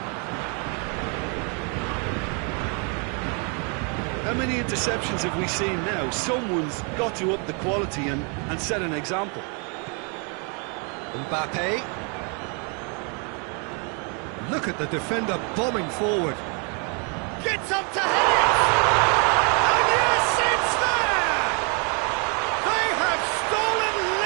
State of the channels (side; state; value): left; quieter; 36.6 dB